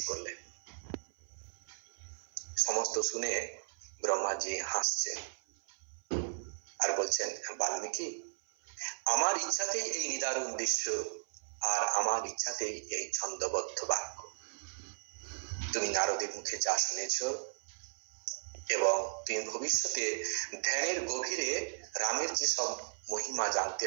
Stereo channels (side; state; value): left; silent; 54 dB below the other